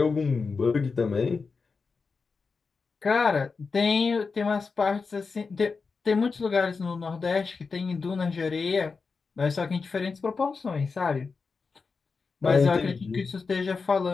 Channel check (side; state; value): right; quieter; 4.7 dB